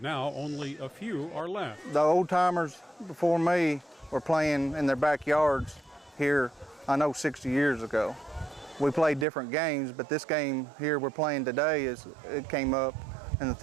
now only a few are left. The old-timers before me were playing in their backyards here, I know 60 years ago. We played different games, but this game here we're playing today, it came up in the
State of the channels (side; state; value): left; drops out; at 9.2 s